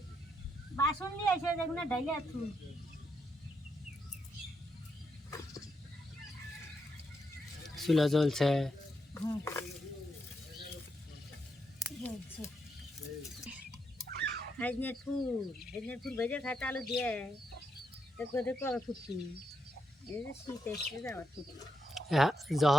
বাসন নিয়ে আসে দেখুন ডাইলে আছু চুলা জ্বলছে। হাজনের ফুল ভেজে খাতে আলু দিয়ে দেখো দেখো আবার ফুটছি এই যে শীত এসছে আবার ফুটছি হ্যাঁ,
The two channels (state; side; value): normal; both; correlation 0.80